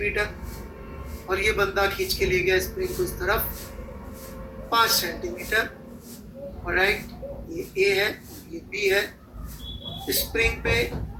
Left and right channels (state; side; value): identical; both; correlation 1.00